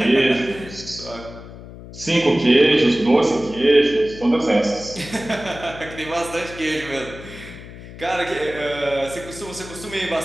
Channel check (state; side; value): noise; left; hum, 15 dB below the sound